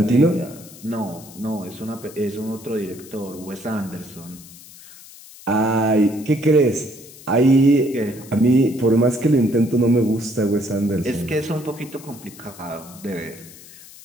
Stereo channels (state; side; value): noise; left; hiss, 19 dB below the sound